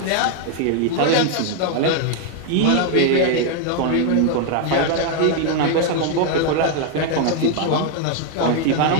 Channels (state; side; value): different; both; correlation 0.00